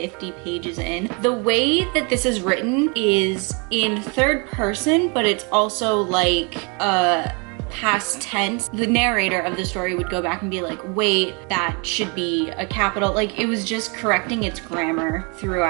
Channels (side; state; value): left; quieter; 32.7 dB